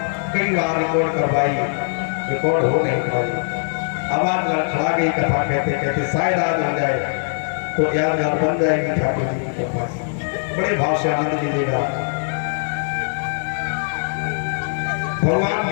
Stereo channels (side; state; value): right; silent; digital silence